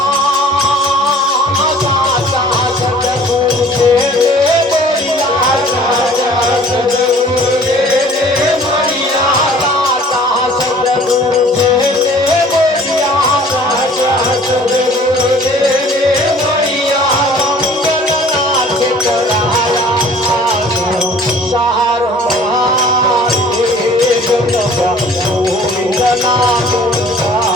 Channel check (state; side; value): normal; both; correlation 0.51